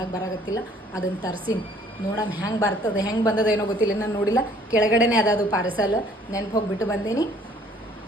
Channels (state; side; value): normal; both; correlation 0.58